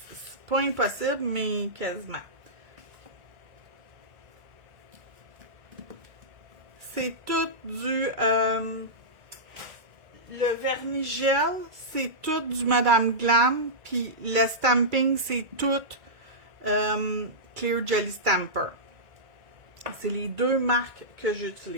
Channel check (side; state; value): left; late; 2.3 ms